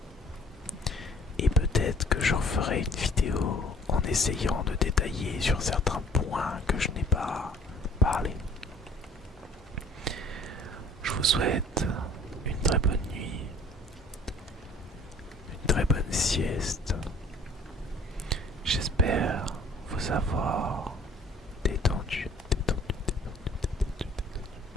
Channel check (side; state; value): both; normal; correlation 0.54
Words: Et peut-être que je referai une vidéo en essayant de détailler sur certains points que je n'ai pas parlé. Je vous souhaite une très bonne nuit savoir